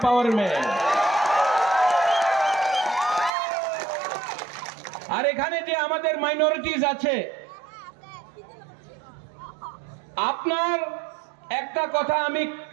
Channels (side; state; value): left; drops out; at 3.3 s